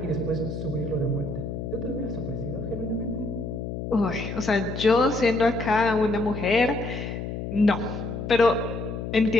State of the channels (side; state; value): left; noise; hum, 6 dB below the sound